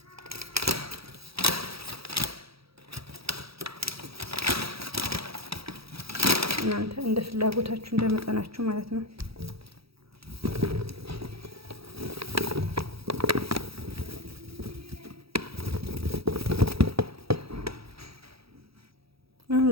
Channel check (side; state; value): left; late; 0.77 ms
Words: እናንተ እንደ ፍላጎታችሁ እንደ መጠናችሁ ማለት ነው። አሁን